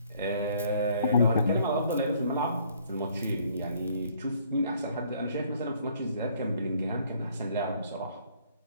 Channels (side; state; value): both; inverted; correlation -0.62